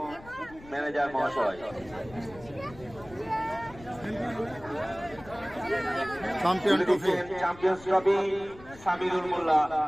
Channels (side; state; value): left; noise; rumble, 20 dB below the sound